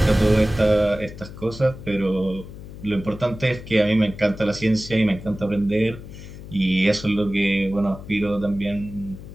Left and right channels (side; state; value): left; noise; hum, 14 dB below the sound